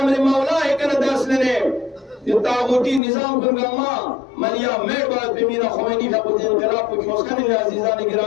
مولاه کنه درس لنه طاغوتی نظام کنگا ما ملیا میڑ باید بمینا خمینی فقط انقلاب کو کیوسکنی عزیزان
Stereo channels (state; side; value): drops out; right; at 3.0 s